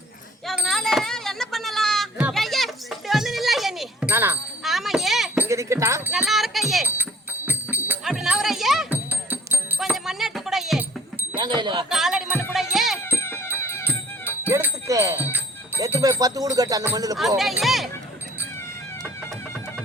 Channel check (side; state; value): both; normal; correlation 0.55